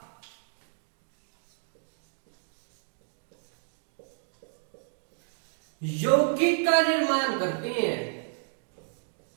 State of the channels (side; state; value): left; silent; digital silence